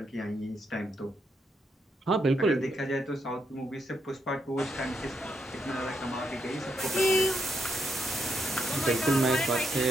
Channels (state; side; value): normal; both; correlation 0.80